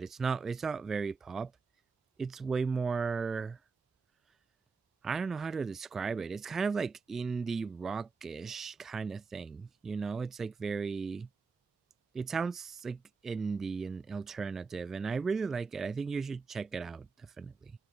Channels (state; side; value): quieter; left; 4.8 dB